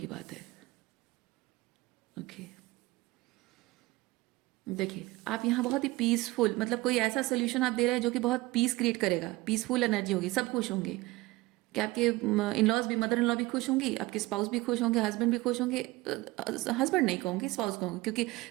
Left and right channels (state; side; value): quieter; left; 20.5 dB